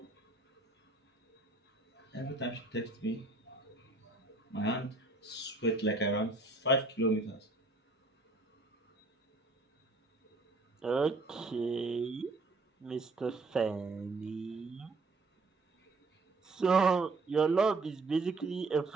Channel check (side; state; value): left; quieter; 3.3 dB